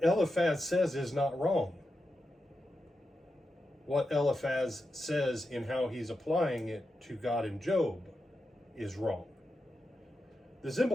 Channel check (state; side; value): normal; both; correlation 0.88